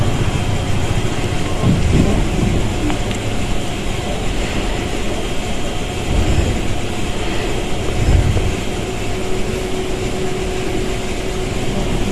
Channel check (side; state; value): both; identical; correlation 1.00